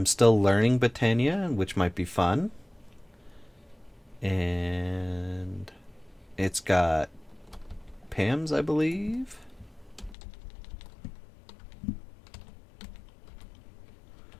still learning Botania, which might be fun. And it's got Pams, I believe.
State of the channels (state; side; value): drops out; right; at 10.2 s